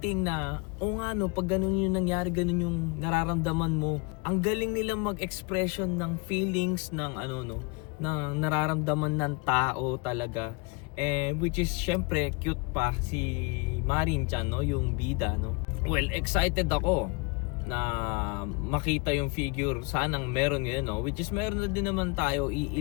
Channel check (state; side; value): quieter; right; 29.4 dB